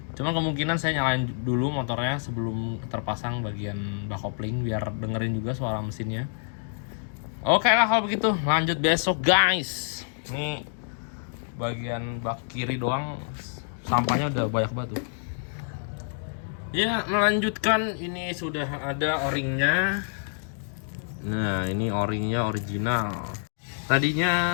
Cuman kemungkinan saya nyalain dulu motornya sebelum terpasang bagian bak kopling biar dengerin juga suara mesinnya. Oke lah kalau begitu, lanjut besok guys. Ini bagian bak kiri doang sampahnya udah banyak banget tuh. Ya, melanjutkan, ini sudah ada o-ringnya. Nah, ini o-ringnya original.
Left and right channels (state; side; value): silent; right; digital silence